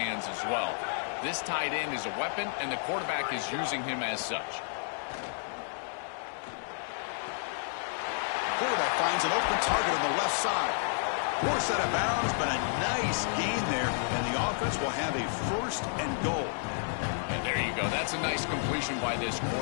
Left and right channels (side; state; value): right; silent; 57 dB below the other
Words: as well. This tight end is a weapon, and the quarterback is using him as such. Quarterback finds an open target on the left side. Forced out of bounds, but a nice gain there, and the offense will have a first and goal. And there you go. That's a nice completion by this